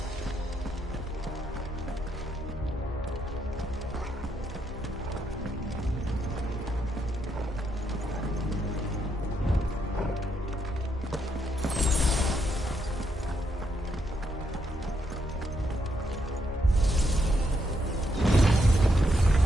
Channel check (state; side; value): normal; both; correlation 0.78